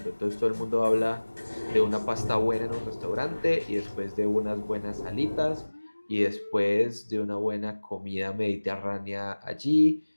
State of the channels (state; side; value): inverted; both; correlation -1.00